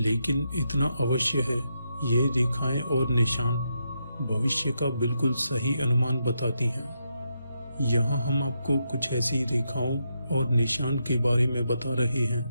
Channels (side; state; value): both; inverted; correlation -0.82